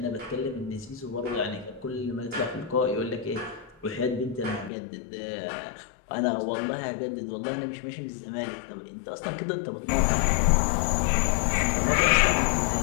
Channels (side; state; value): right; drops out; at 4.7 s